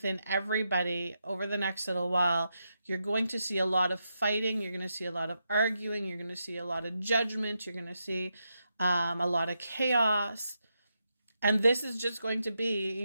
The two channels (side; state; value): both; inverted; correlation -0.84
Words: everybody over the next little while. You're going to see a lot of fighting. You're going to see a lot of arguing. You're going to see a lot of judgment. You're going to see a lot of chaos. And this is just going to